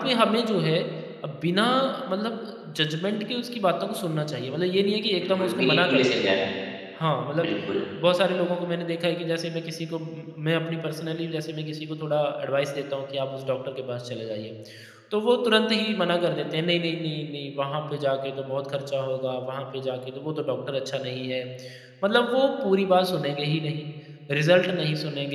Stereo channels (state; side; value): identical; both; correlation 1.00